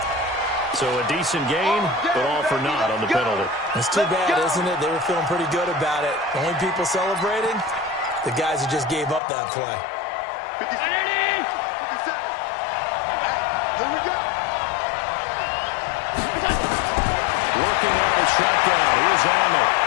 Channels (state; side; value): drops out; right; at 9.2 s